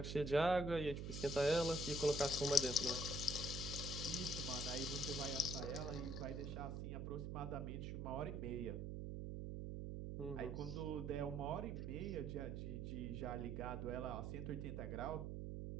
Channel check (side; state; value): right; noise; hum, 4 dB below the sound